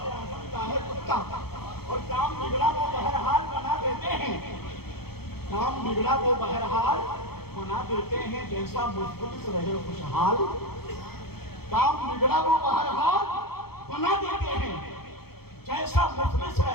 اعظم کا ہے کتا، اور کام بگڑا وہ بہرحال بنا دیتے ہیں، کام بگڑا وہ بہرحال بنا دیتے ہیں، جیسا مفلس رہے خوشحال، کام بگڑا وہ بہرحال بنا دیتے ہیں، جیسا مفلس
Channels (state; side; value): late; right; 0.96 ms